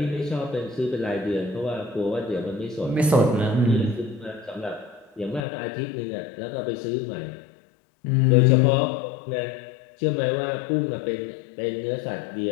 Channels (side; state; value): right; drops out; at 5.4 s